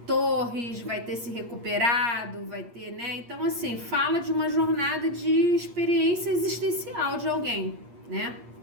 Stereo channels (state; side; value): late; left; 8.5 ms